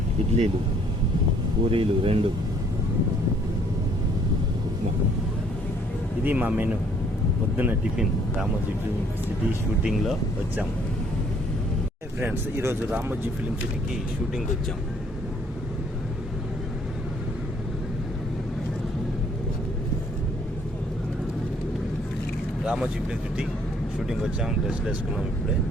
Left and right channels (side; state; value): both; normal; correlation 0.63